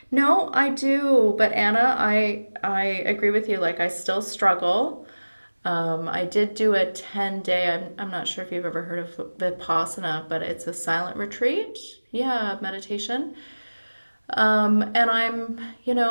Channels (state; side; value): inverted; both; correlation -1.00